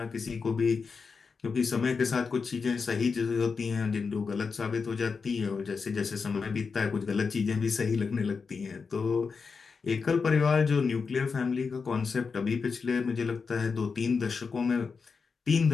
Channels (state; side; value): quieter; right; 5.1 dB